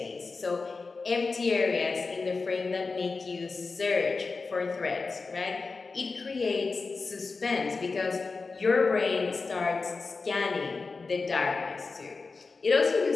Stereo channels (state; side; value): quieter; right; 4.2 dB